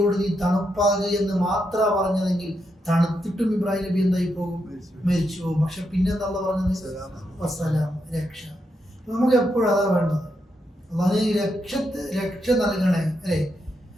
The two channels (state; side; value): normal; both; correlation 0.82